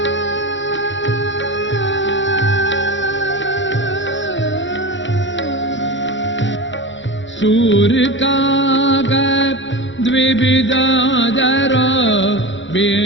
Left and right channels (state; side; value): late; right; 0.54 ms